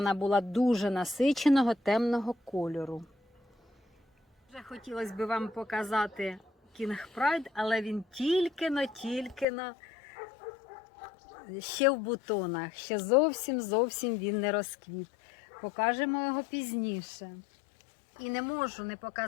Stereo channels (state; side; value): drops out; right; at 9.5 s